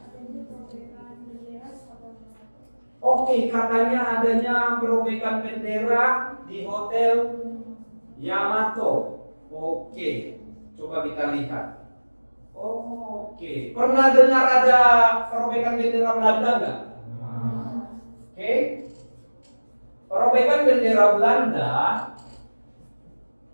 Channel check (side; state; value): both; inverted; correlation -1.00